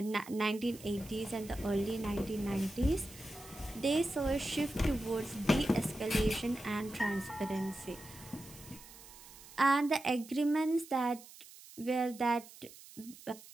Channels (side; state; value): right; noise; hiss, 19 dB below the sound